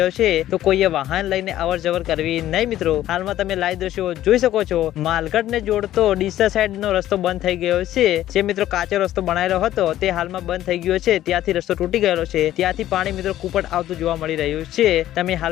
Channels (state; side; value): quieter; right; 13.3 dB